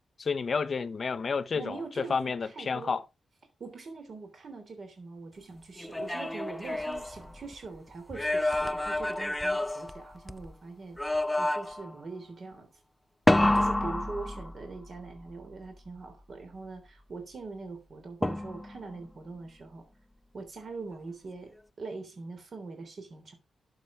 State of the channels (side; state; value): both; normal; correlation 0.96